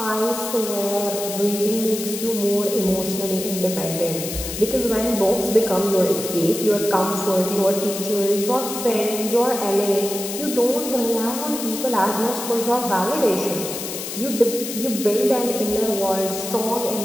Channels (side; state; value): left; noise; hiss, 7 dB below the sound